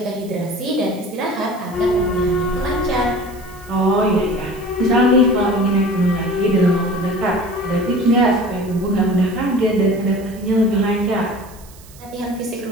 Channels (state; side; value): noise; right; hiss, 23 dB below the sound